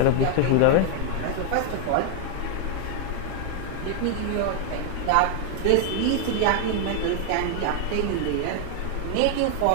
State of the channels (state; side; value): different; both; correlation 0.00